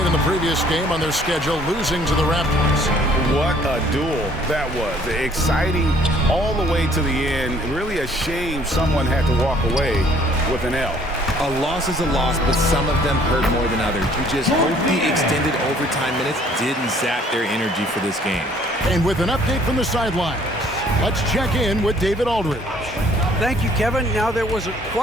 in the previous game on their schedule, losing to the Raptors. What a duel that was. Exciting all the way to the end. Really a shame someone had to walk away with an L. A loss is a loss, but some of them hurt more than others. You just hope the extended overtime minutes didn't zap their energy for this game. And with an update from the sidelines, let's check in with David Aldridge. Thank you, Kevin. Now, there was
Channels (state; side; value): normal; both; correlation 0.59